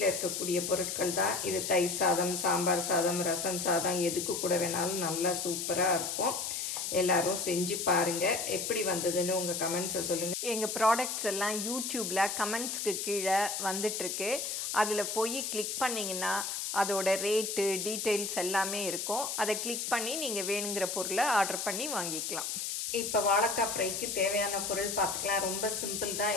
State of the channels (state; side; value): noise; left; hiss, 3 dB below the sound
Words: இருக்கக்கூடிய பொருட்கள் தான். இது தயிர் சாதம், சாம்பார் சாதம், ரசம் சாதம் எதுக்கு கூட வேணாலும் நல்லா சூப்பரா இருக்கும். எல்லாரும் செஞ்சு பாருங்க. எப்படி வந்ததுன்னு உங்க கமெண்ட்ஸை சொல்லுங்க. எங்க ப்ராடக்ட்ஸ் எல்லாம் யூடியூப்ல கமெண்ட்ஸ்க்கு கீழே வந்துட்டு இருக்கு. அதுல போய் கிளிக் பண்ணீங்கன்னா அதோட ரேட்டு டீடைல்ஸ் எல்லாமே இருக்கும். அதை கிளிக் பண்ணி நீங்க வேணுங்கிற பொருளை ஆர்டர் பண்ணி வாங்கிக்கலாம். இப்போ வாழைக்காய் ஃப்ரைக்கு தேவையான பொருள் பார்த்துக்கலாம். ரொம்ப சிம்பிள் தான்.